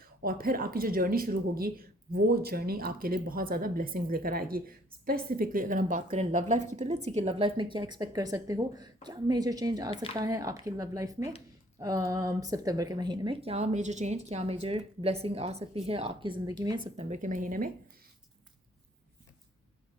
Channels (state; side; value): normal; both; correlation 0.61